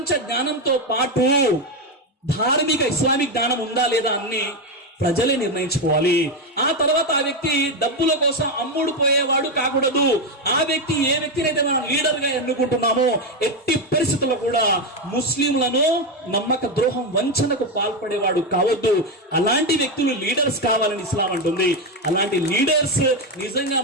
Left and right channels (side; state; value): both; normal; correlation 0.09